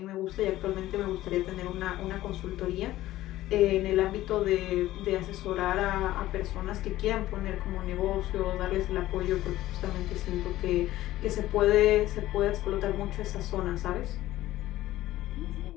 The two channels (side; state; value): right; quieter; 15.3 dB